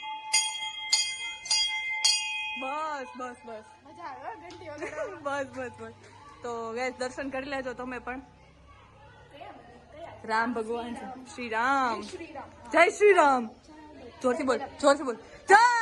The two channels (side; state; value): both; identical; correlation 1.00